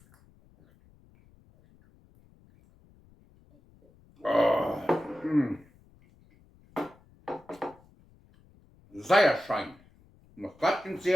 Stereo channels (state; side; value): noise; left; rumble, 29 dB below the sound